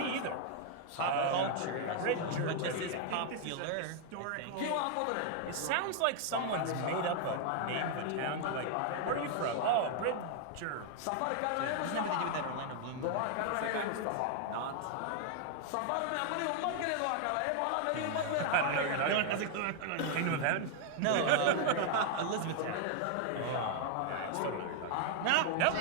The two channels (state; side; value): different; both; correlation 0.00